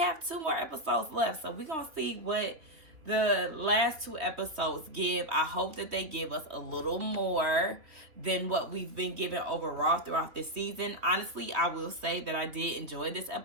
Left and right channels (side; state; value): left; late; 3.3 ms